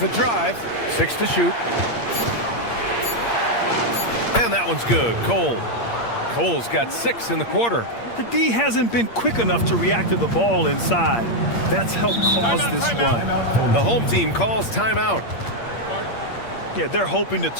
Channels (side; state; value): right; late; 8.6 ms